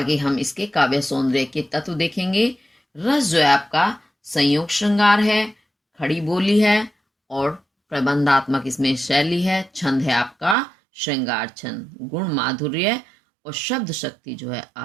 हम इसके काव्य सौंदर्य के तत्व देखेंगे। रस जो है आपका संयोग श्रृंगार है, खड़ी बोली है और प्रबंधात्मक इसमें शैली है। छंद है आपका श्रृंगार छंद, गुण माधुर्य और शब्द शक्ति जो है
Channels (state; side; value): drops out; left; at 10.6 s